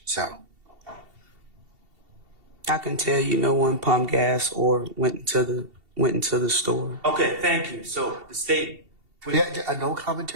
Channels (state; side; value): late; left; 2.7 ms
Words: So I can tell you no one pumped gas or went into the store. Okay, thank you. So the state. yeah, no